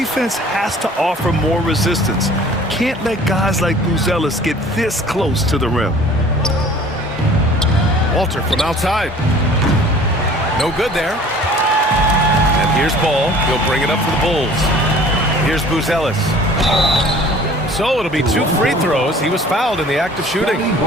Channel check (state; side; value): normal; both; correlation 0.49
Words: has to offer more resistance. Can't let guys like Buzelis get this close to the rim. Walter from outside. No good there. And here's Ball. He'll bring it up for the Bulls. Here's Buzelis. So it'll be 2 free throws. He was fouled in the act of shooting.